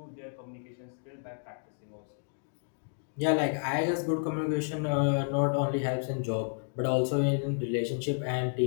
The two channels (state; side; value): silent; right; digital silence